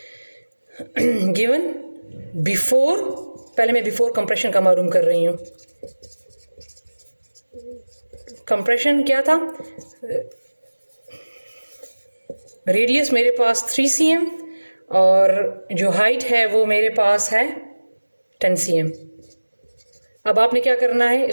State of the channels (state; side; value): inverted; both; correlation -1.00